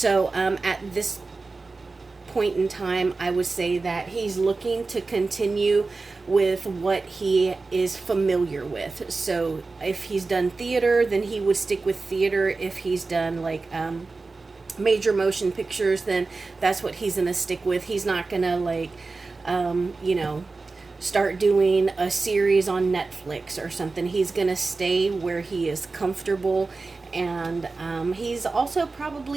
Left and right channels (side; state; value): left; quieter; 3.8 dB